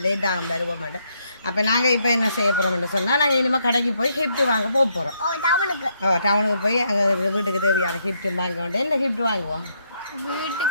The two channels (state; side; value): inverted; both; correlation -0.75